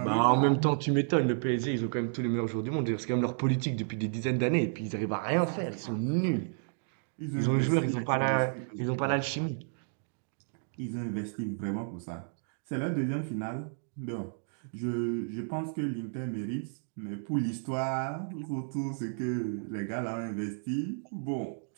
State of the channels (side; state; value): left; silent; digital silence